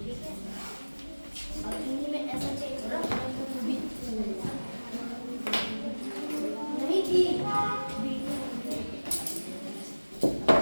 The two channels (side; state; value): both; inverted; correlation -1.00